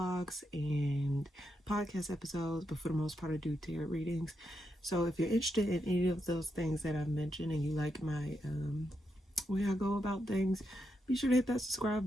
and podcast episodes, but for the most part I do tarot readings. So if you're interested in any of those things that I've mentioned and you like my way I go about things, be sure to hit that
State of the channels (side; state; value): both; normal; correlation 0.83